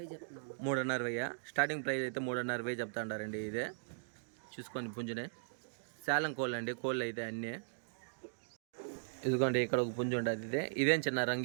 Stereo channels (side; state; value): left; silent; digital silence